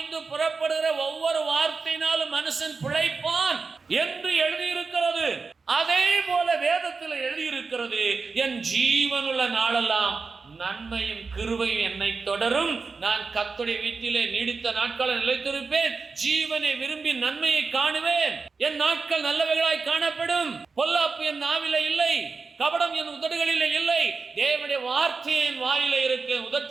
புறப்படுகிற ஒவ்வொரு வார்த்தையினாலும் மனுஷன் பிழைப்பான் என்று எழுதியிருக்கிறது. அதே போல வேதத்தில் எழுதியிருக்கிறது, என் ஜீவனுள்ள நாளெல்லாம் நன்மையும் கிருபையும் என்னை தொடரும். நான் கர்த்தருடைய வீட்டிலே நீடித்த நாட்களை நிலைத்திருப்பேன். ஜீவனை விரும்பி நன்மையை காணுவேன். என் நாட்கள் நல்லவைகளாய் காணப்படும். பொல்லாப்பு என் நாவிலே இல்லை, கபடம் என் உதடுகளிலே இல்லை. தேவனுடைய வார்த்தை என் வாயிலே இருக்கு,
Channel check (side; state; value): left; quieter; 4.6 dB